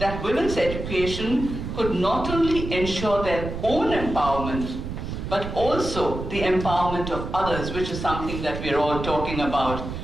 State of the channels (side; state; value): right; noise; rumble, 6 dB below the sound